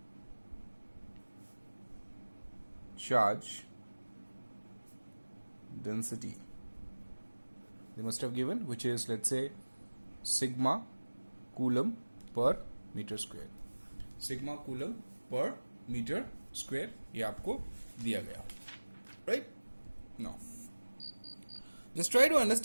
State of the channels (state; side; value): inverted; both; correlation -1.00